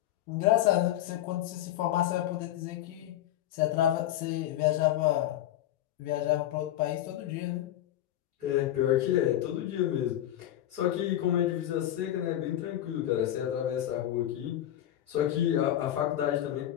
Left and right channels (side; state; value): right; quieter; 12.7 dB